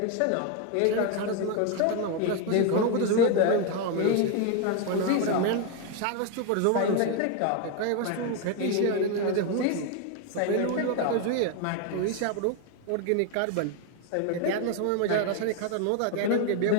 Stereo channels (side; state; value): both; different; correlation 0.01